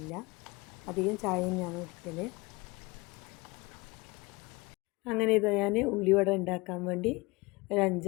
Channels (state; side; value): quieter; right; 24.7 dB